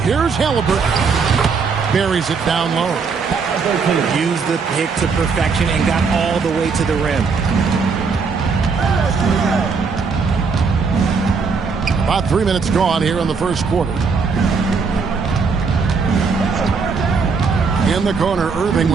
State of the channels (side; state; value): left; quieter; 5.1 dB